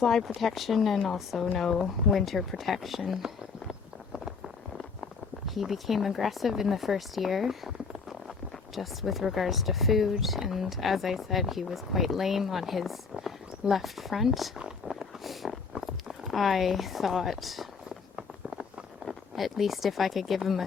protection and also no winter protection. He became aggressive in the first year, just with regards to food, and as I said, he was quite lame on his left front. I thought at least if I could give him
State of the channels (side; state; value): right; quieter; 5.1 dB